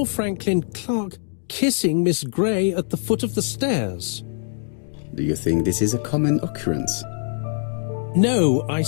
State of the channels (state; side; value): silent; right; digital silence